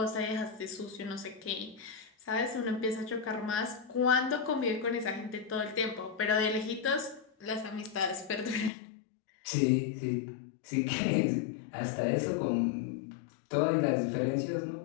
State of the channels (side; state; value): right; drops out; at 8.7 s